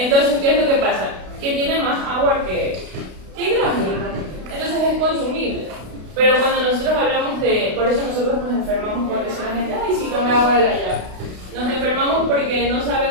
¿qué es lo que pasa? Que tiene más agua que hidrógeno. Entonces es consumible. Pero cuando nosotros hablamos por eso nosotros nos enfermamos cuando dice la gente, ay, sí, tome agua de la llave. Nos enfermamos porque no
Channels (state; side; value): late; left; 32 ms